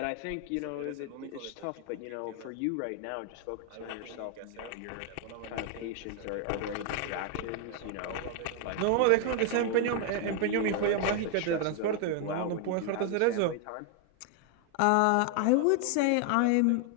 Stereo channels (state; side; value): different; both; correlation 0.00